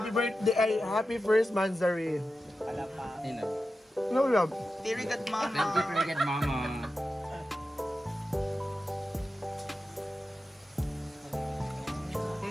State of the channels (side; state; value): both; normal; correlation 0.92